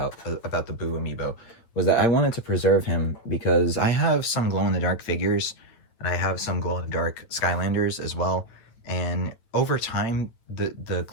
the Boo Amiibo, was that I wanted to preserve him because I have some glow-in-the-dark figures, and I have some glow-in-the-dark Skylanders as well. And over time, the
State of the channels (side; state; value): right; late; 9.1 ms